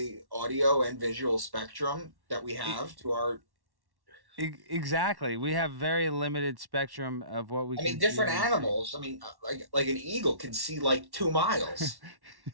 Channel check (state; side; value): late; left; 1.1 ms